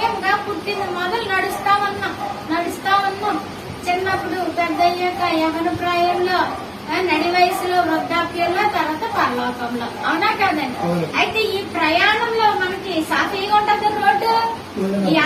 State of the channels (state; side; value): identical; both; correlation 1.00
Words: పుట్టిన మొదలు నడుస్తా ఉన్నాం. చిన్నప్పుడు పెద్ద అయ్యాక యవన ప్రాయంలో, నడి వయసులో, వృద్ధాప్యంలో, తర్వాత పరలోకంలో. అవునా కాదండి? అయితే ఈ ప్రయాణంలో మనకి సాఫీగా ఉంటుందా రోడ్డు? ఈ